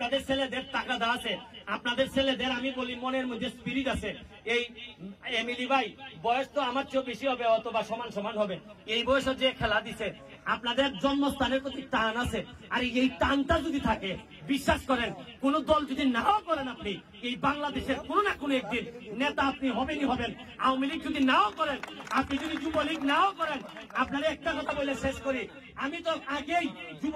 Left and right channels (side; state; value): both; identical; correlation 1.00